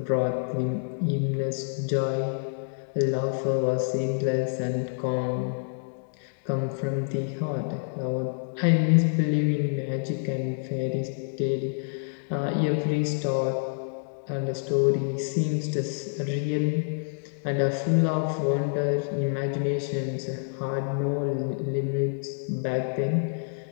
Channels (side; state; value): right; silent; digital silence